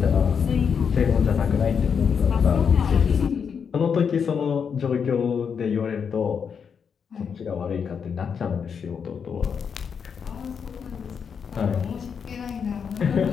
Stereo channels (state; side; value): quieter; right; 6.7 dB